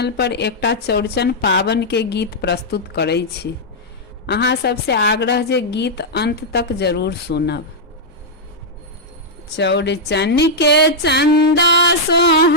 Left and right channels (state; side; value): normal; both; correlation -0.05